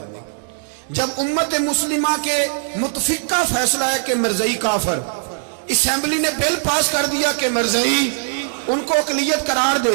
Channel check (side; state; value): left; silent; digital silence